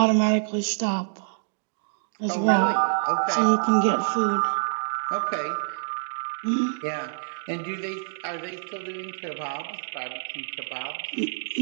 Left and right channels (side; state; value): left; silent; digital silence